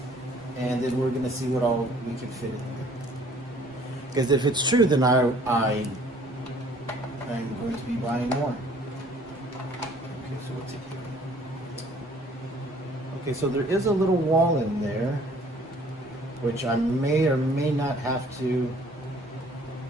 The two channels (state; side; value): normal; both; correlation 0.56